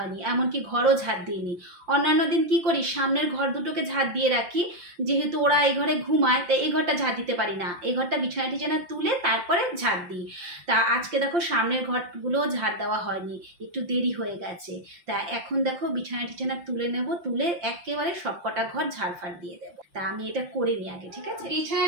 এমনকি ঘরও ঝাড় দিইনি। অন্যান্য দিন কি করি, সামনের ঘর দুটোকে ঝাড় দিয়ে রাখি, যেহেতু ওরা এই ঘরে ঘুমায় তাই এই ঘরটা ঝাড় দিতে পারি না, এই ঘরটা বিছানা টিছানা তুলে তারপরে ঝাড় দিই। তা আজকে দেখো সামনের ঘরগুলো ঝাড় দেওয়া হয়নি, একটু দেরি হয়ে গেছে। তা এখন দেখো বিছানা টিছানা তুলে নেব, তুলে একেবারে সব কটা ঘর ঝাড়ফাড় দিয়ে দেবো। তা আমি এটা করে নিই আগে, ঠিক আছে? বিছানা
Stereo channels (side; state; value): left; late; 5.7 ms